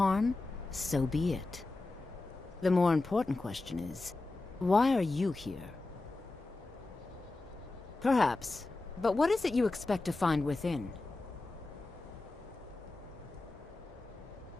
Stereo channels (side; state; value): right; quieter; 3.2 dB